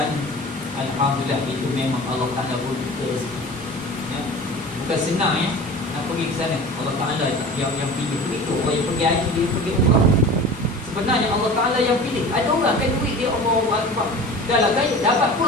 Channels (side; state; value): both; normal; correlation 0.38